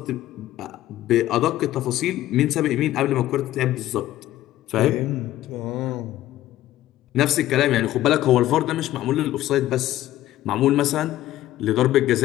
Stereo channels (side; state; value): right; quieter; 14.3 dB